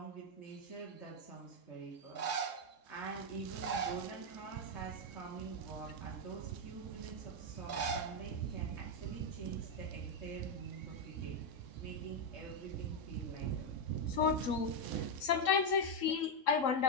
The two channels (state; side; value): late; right; 3.7 ms